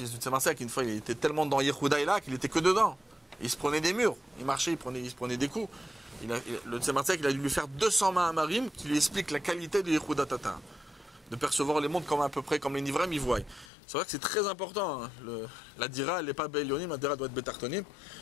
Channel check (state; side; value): drops out; right; at 13.7 s